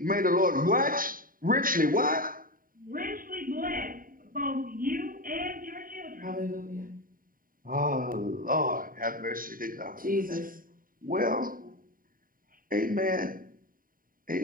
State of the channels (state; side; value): late; left; 0.41 ms